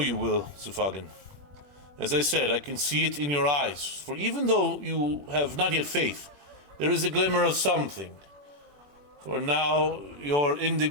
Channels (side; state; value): left; late; 21 ms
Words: will, Sufagan. As I said, I can see it in your eyes, for even though you have not yet faith, there is a glimmer of something. For now, your